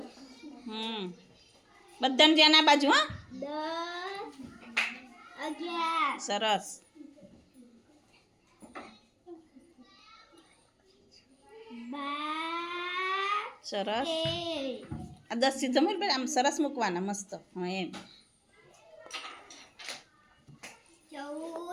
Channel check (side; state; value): both; identical; correlation 1.00